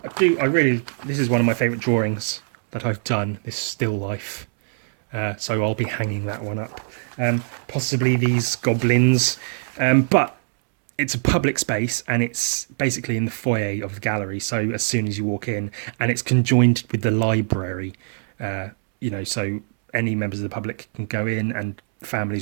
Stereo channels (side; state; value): left; silent; 64 dB below the other